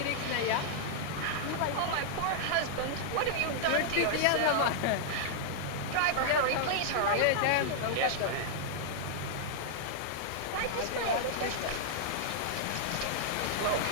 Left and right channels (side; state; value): both; different; correlation -0.01